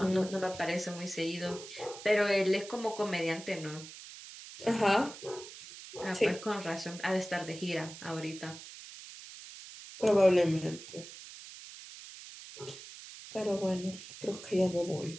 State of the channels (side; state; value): right; noise; hiss, 14 dB below the sound